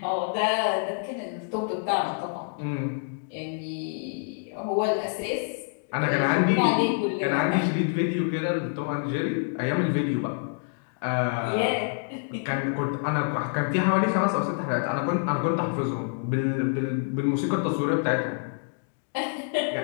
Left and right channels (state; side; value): silent; right; digital silence